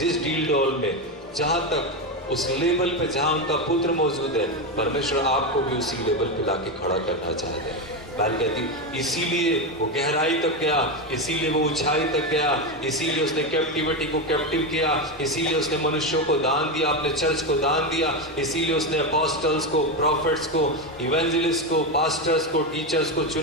डील डोल में, जहां तक, उस लेवल पे जहां उनका पुत्र मौजूद है, परमेश्वर आपको भी उसी लेवल पे लाके खड़ा करना चाहते हैं। बाइबल कहती इसीलिए वो गहराई तक गया, इसीलिए वो ऊंचाई तक गया, इसीलिए उसने कैप्टिविटी को कैप्टिव किया, इसीलिए उसने मनुष्यों को दान दिया, अपने चर्च को दान दिया, इसीलिए उसने अपोस्टल्स को, प्रॉफिट्स को, इवेंजलिस्ट को, पास्टर्स को, टीचर्स को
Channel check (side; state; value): both; normal; correlation 0.13